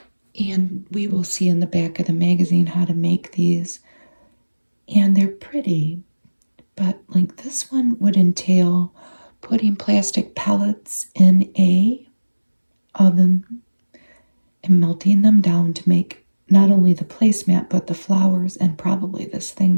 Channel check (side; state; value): both; inverted; correlation -1.00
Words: And we will see in the back of the magazine how to make these. And they're pretty. But like this one would entail putting plastic pellets in a oven and melting them down to make not only the placemat but the flowers and probably this thing